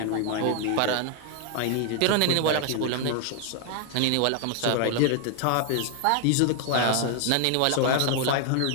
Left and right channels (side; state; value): both; different; correlation 0.00